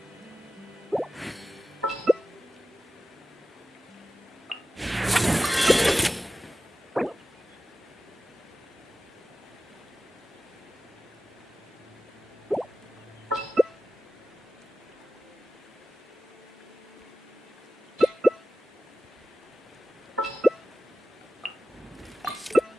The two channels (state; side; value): normal; both; correlation 0.95